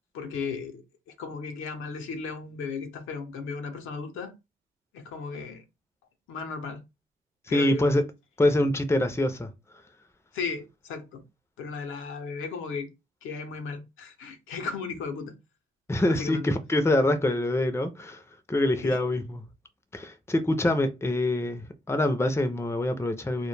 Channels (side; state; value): both; normal; correlation 0.79